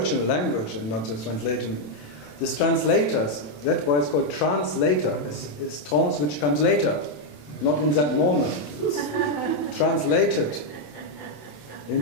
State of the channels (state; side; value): late; right; 27 ms